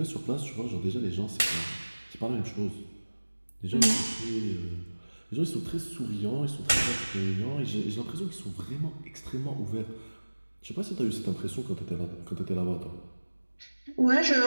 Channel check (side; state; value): both; inverted; correlation -1.00